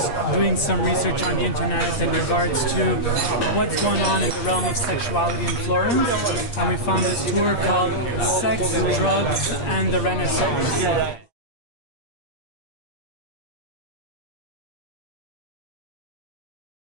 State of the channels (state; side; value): late; right; 8.5 ms